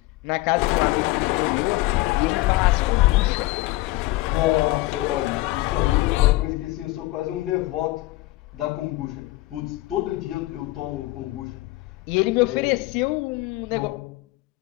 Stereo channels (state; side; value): quieter; right; 18.9 dB